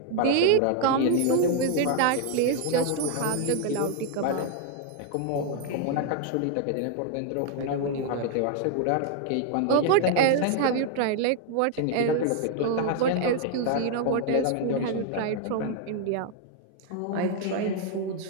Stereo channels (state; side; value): different; both; correlation 0.00